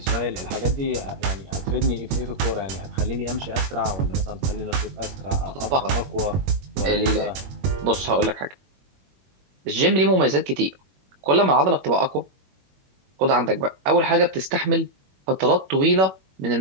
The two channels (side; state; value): left; late; 21 ms